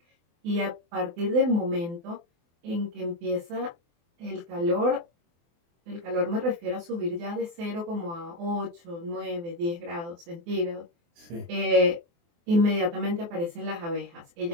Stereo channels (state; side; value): late; left; 24 ms